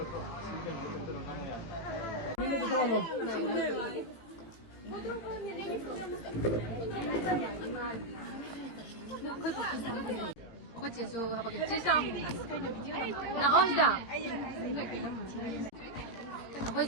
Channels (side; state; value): right; late; 18 ms